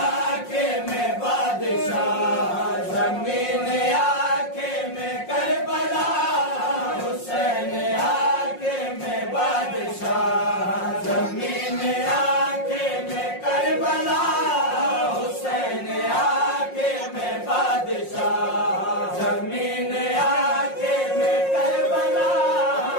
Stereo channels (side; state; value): right; late; 5.5 ms